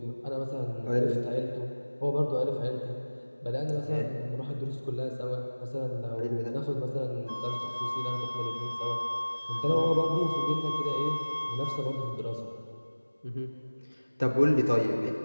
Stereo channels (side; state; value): both; inverted; correlation -1.00